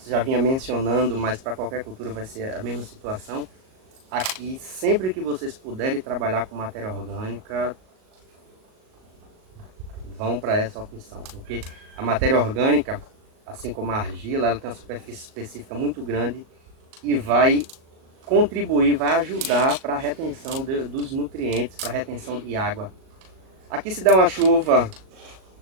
você já vinha mencionando, mas para qualquer cultura vai ser a mesma situação. Aqui, sempre que vocês puderem trabalhar com matéria orgânica, vão para essa opção, porque a matéria orgânica, assim como a argila, ela tem uma superfície específica muito grande e vai contribuir, vai ajudar para a retenção dos nutrientes, para a retenção de água. Aqui se der uma chuva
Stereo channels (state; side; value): late; left; 38 ms